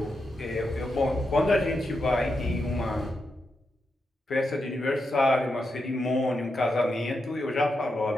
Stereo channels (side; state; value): both; normal; correlation 0.86